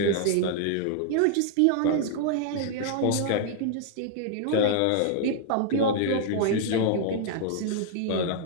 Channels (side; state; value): both; different; correlation -0.01